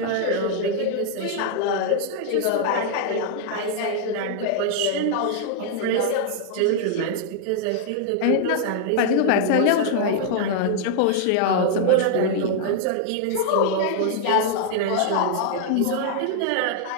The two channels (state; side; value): different; both; correlation -0.01